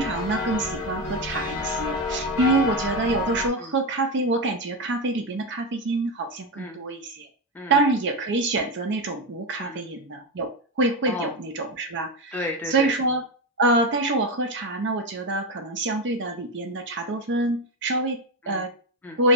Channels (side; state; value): both; normal; correlation 0.12